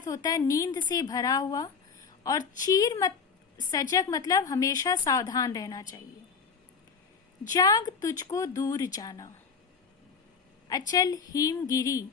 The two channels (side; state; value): right; quieter; 5.7 dB